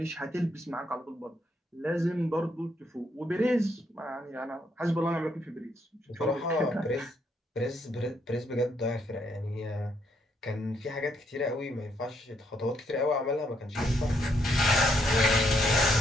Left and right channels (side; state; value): both; normal; correlation 0.74